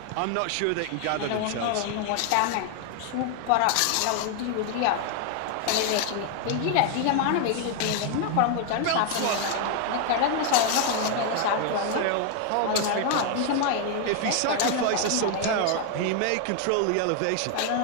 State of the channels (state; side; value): different; both; correlation 0.01